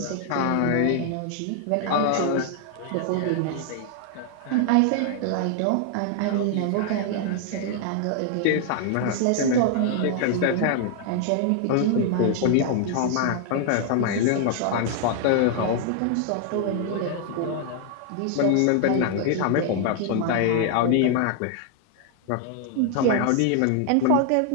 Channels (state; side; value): different; both; correlation 0.00